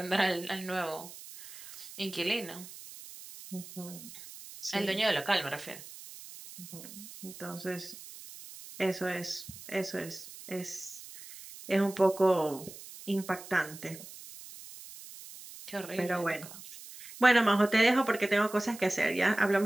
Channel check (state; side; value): noise; right; hiss, 15 dB below the sound